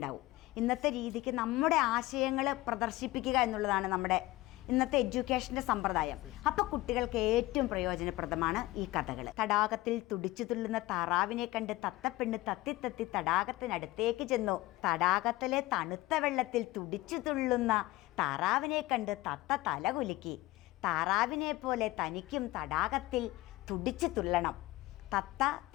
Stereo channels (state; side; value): quieter; right; 18.7 dB